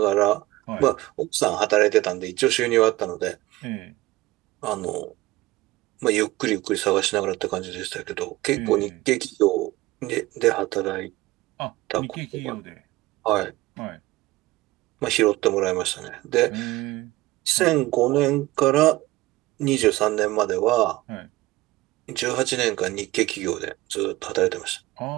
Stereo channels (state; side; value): quieter; left; 18.3 dB